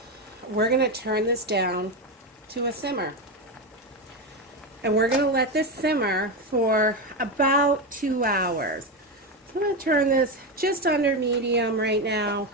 We're going to turn this down to a simmer. And we're going to let this simmer for about 2 hours. I'm going to turn this just under medium right now.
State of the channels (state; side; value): normal; both; correlation 0.13